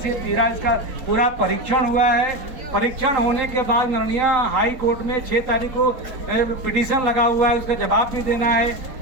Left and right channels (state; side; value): late; left; 4.2 ms